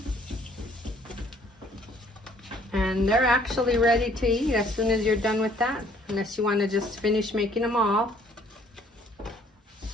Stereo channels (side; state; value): both; normal; correlation 0.60